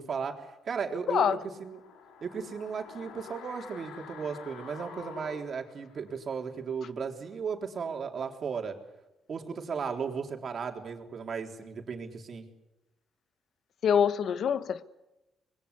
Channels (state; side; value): normal; both; correlation 0.72